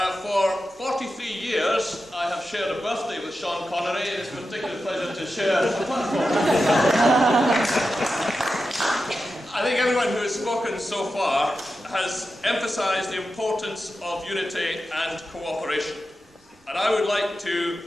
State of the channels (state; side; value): normal; both; correlation 0.91